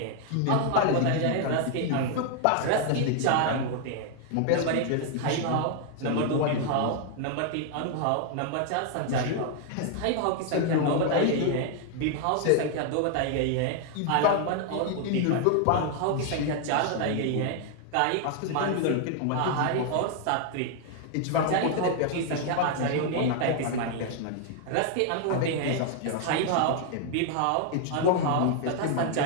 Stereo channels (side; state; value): both; different; correlation 0.00